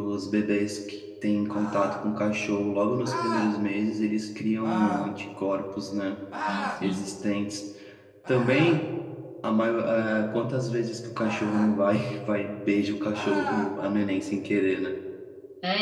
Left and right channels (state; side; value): identical; both; correlation 1.00